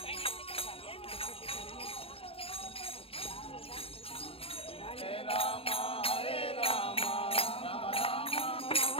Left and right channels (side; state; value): right; late; 0.27 ms